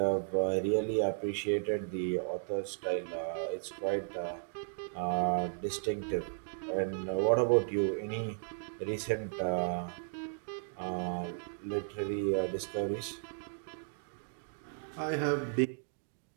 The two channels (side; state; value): left; silent; digital silence